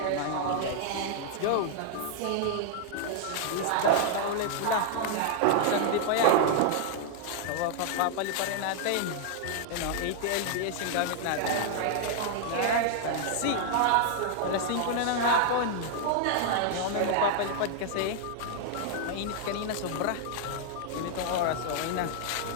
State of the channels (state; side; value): different; both; correlation 0.00